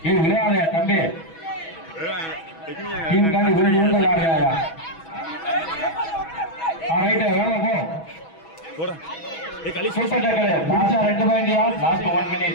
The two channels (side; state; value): right; late; 6.2 ms